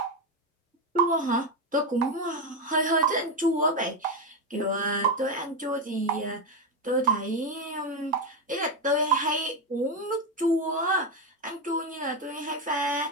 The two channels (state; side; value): normal; both; correlation 0.09